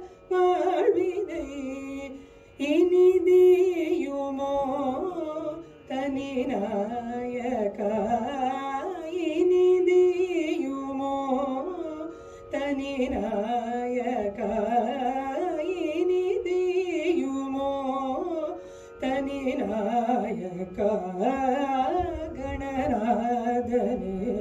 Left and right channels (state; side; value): identical; both; correlation 1.00